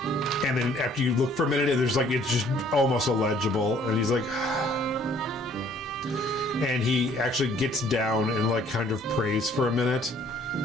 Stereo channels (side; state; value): both; normal; correlation 0.59